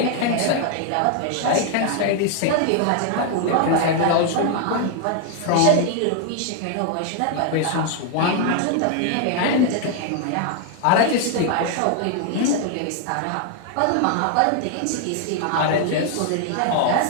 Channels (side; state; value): both; different; correlation 0.00